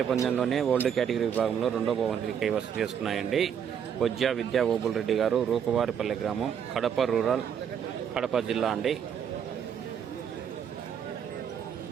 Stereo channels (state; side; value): quieter; left; 8.1 dB